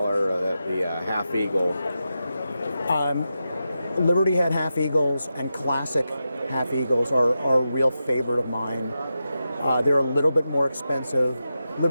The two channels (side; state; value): both; inverted; correlation -0.89